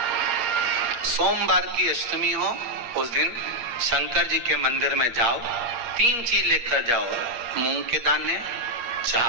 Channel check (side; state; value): left; late; 8.5 ms